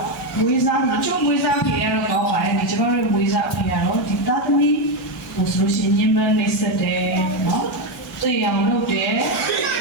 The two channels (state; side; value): normal; both; correlation 0.08